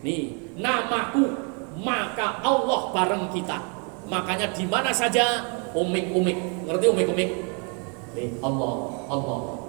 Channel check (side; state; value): left; quieter; 36.8 dB